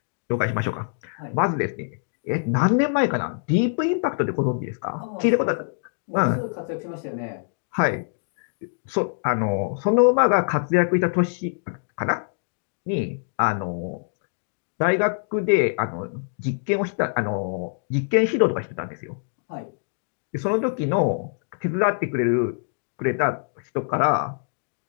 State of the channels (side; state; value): right; silent; digital silence